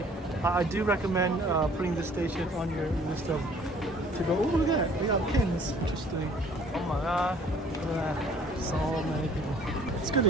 I do recommend putting this station on your list of to go. Oh, look at that, they got pins. Interesting. Oh my god, look at that. So many people. It's good to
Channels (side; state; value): both; normal; correlation 0.55